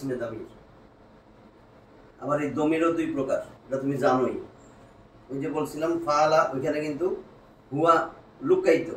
দামির। আবার এই দমিরও দুই প্রকার, এটা তুমি জানোই। ওই যে বলছিলাম ফালা, ওইখানে কিন্তু হুয়া লুকাইতো,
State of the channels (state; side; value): identical; both; correlation 1.00